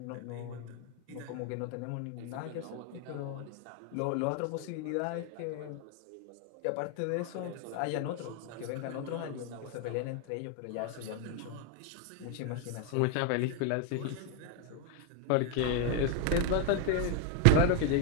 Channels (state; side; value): different; both; correlation 0.01